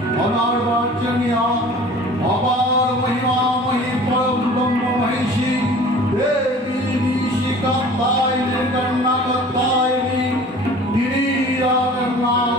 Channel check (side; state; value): both; normal; correlation 0.45